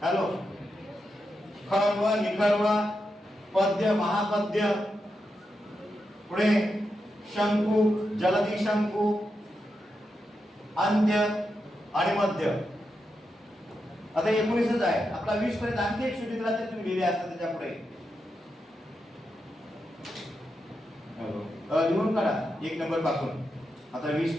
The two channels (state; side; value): normal; both; correlation 0.86